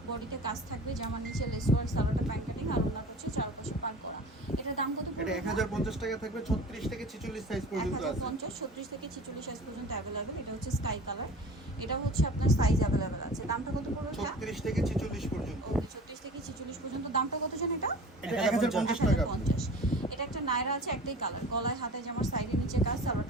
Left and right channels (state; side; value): normal; both; correlation 0.40